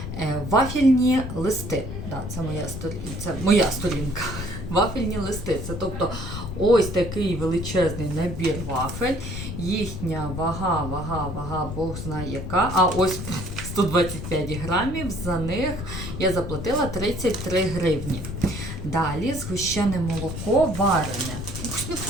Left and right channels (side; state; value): left; noise; rumble, 7 dB below the sound